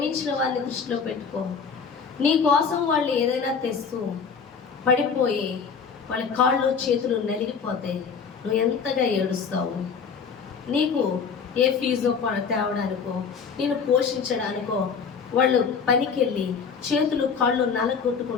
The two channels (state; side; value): quieter; right; 5.9 dB